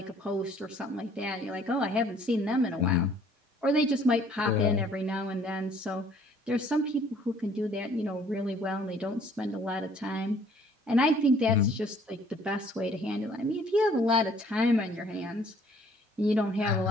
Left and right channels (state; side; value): normal; both; correlation 0.58